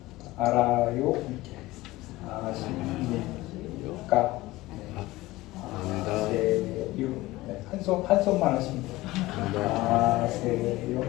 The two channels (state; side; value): quieter; right; 18.8 dB